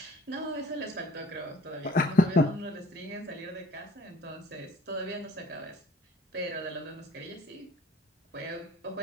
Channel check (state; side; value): normal; both; correlation 0.54